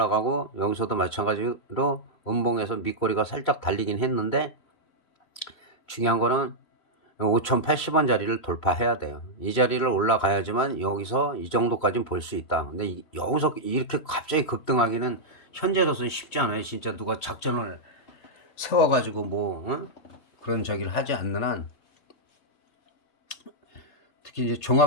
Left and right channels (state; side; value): late; right; 3.0 ms